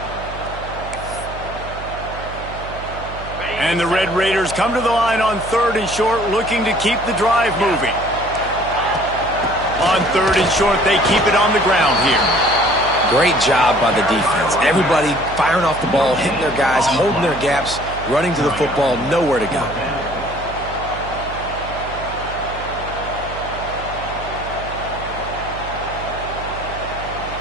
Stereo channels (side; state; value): right; noise; hum, 12 dB below the sound